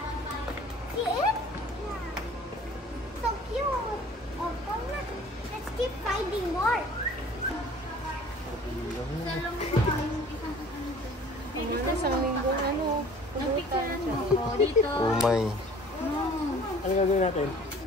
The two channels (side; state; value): both; normal; correlation 0.49